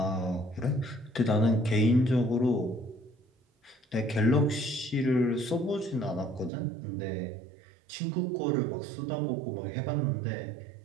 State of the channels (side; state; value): left; drops out; at 6.5 s